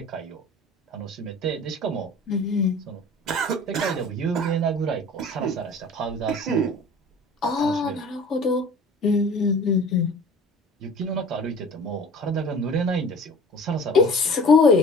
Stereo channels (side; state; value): both; normal; correlation 0.44